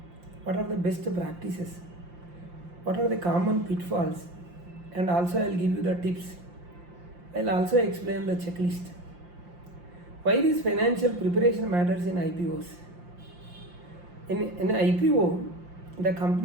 What are the best practices? What are the common pitfalls? And also I will give you the tips. I will also explain the checklist. Why this financial preparation matters in IPOs? In IPO, the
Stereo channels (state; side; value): late; left; 5.7 ms